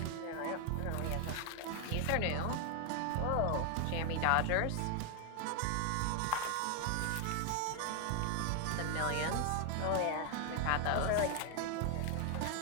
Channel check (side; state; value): both; different; correlation 0.01